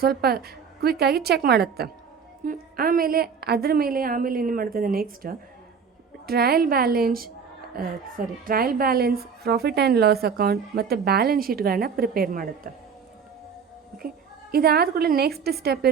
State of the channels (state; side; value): quieter; left; 6.3 dB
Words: ಸ್ವಲ್ಪ ಕ್ವಿಕ್ಕಾಗಿ ಚೆಕ್ ಮಾಡುತ್ತೆ. ಆಮೇಲೆ ಅದ್ರ ಮೇಲೆ ಏನು ಮಾಡ್ತದೆ, next trial balance, profit and loss account ಮತ್ತು ಬ್ಯಾಲೆನ್ಸ್ ಶೀಟ್ಗಳನ್ನು ಪ್ರಿಪೇರ್ ಮಾಡುತ್ತೆ. ಓಕೆ, ಇದಾದ ಕೂಡಲೇ ನೆಕ್ಸ್ಟ್ ಸ್ಟೆಪ್